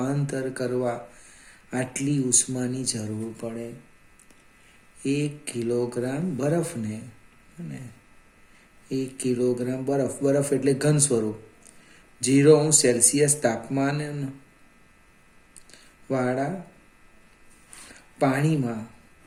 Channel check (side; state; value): both; identical; correlation 1.00